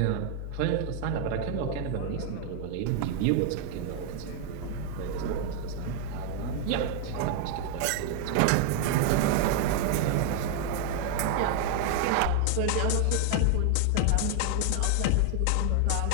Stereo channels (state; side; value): different; both; correlation 0.00